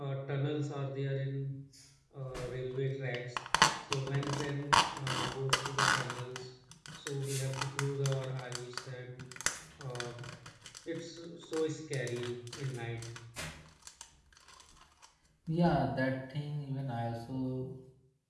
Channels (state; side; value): identical; both; correlation 1.00